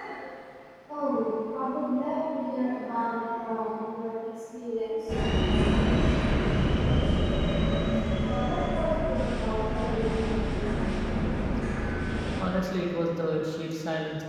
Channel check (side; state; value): both; identical; correlation 1.00